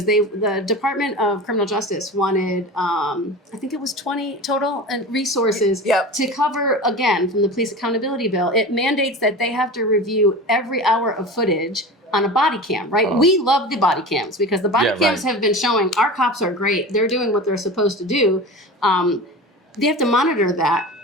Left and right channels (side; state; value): both; normal; correlation 0.32